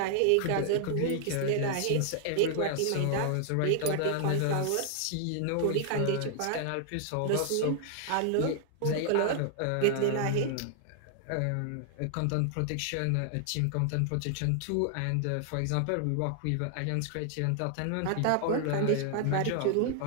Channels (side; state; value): both; different; correlation 0.00